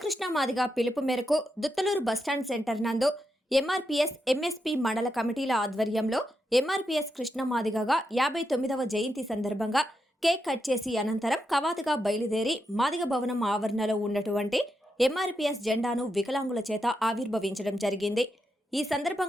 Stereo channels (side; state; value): both; normal; correlation 0.85